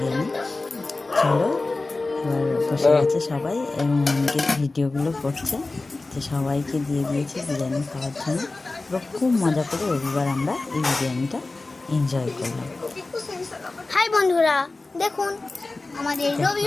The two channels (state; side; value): quieter; right; 3.3 dB